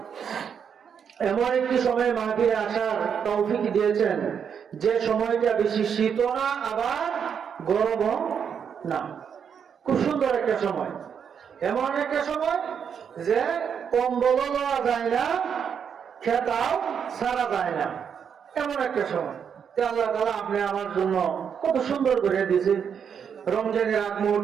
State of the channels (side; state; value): left; quieter; 7.4 dB